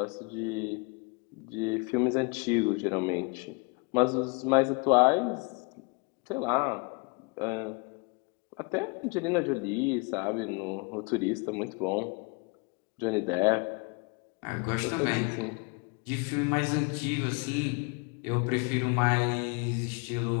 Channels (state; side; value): quieter; right; 31.1 dB